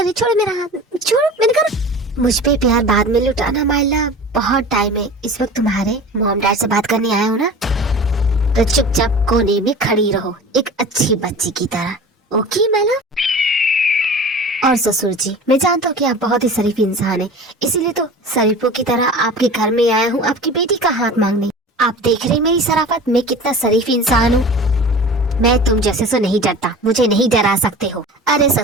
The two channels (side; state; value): both; normal; correlation 0.38